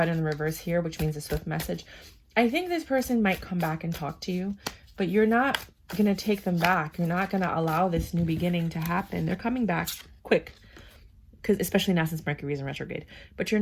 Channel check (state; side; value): identical; both; correlation 1.00